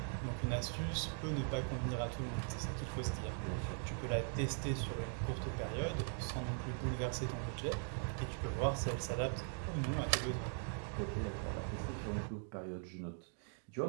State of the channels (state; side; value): silent; left; 50 dB below the other